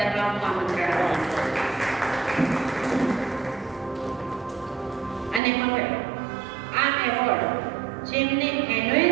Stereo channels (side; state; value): left; drops out; at 5.4 s